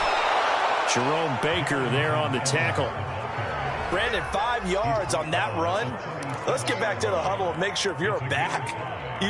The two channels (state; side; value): identical; both; correlation 1.00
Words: Jerome Baker there on the tackle. Brandon, 5 yards on that run. Let's get back to the huddle and make sure if you're a back,